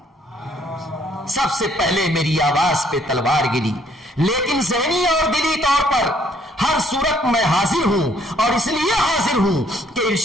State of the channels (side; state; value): both; normal; correlation 0.65